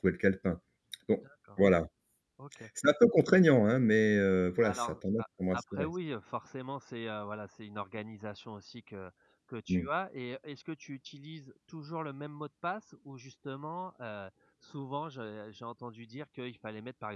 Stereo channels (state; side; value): identical; both; correlation 1.00